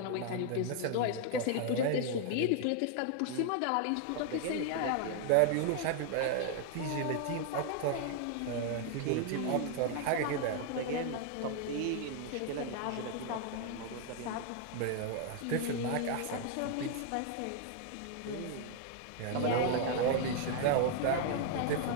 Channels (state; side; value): different; both; correlation 0.00